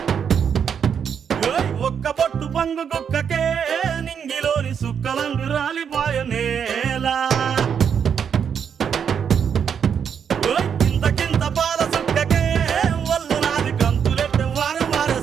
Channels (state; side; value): quieter; left; 7.5 dB